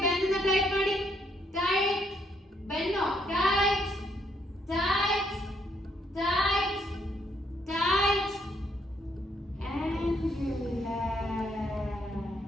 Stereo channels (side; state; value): both; normal; correlation 0.72